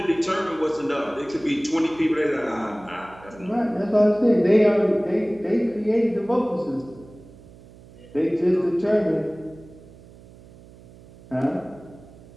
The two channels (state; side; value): noise; right; hum, 22 dB below the sound